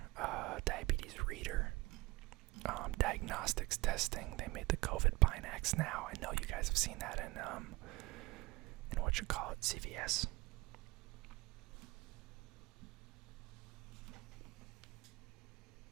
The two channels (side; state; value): left; quieter; 20.5 dB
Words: diabetes reader. Diagnostics testing, they made the COVID Binax now. I know you guys have seen that in CVS.